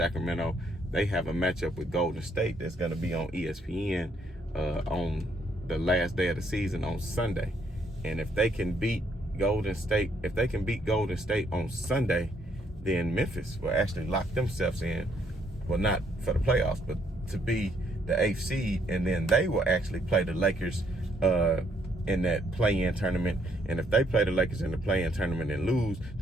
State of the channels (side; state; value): both; normal; correlation 0.70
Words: they have a matchup with Golden State that's going to be on ESPN on the last day of the season on Sunday. And if they can beat Golden State on Sunday, then Memphis will actually lock themselves in, well, not for the playoffs, but to be the 8th seed, and then they will actually play the Lakers in that play-in tournament. And if they play the Lakers in the play-in tournament and lose,